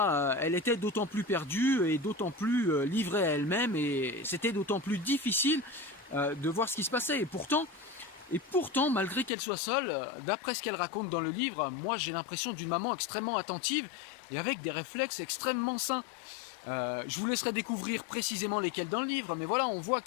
elle était d'autant plus perdue et d'autant plus livrée à elle-même, et c'était d'autant plus difficile de voir ce qui se passait. Et pourtant, malgré qu'elle soit seule, d'après ce qu'elle raconte dans le livre, moi j'ai l'impression d'une maman extrêmement attentive et avec des réflexes extrêmement sains. Je vous laisserai découvrir précisément lesquels dans le livre, mais voilà, on voit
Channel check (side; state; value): right; drops out; at 9.3 s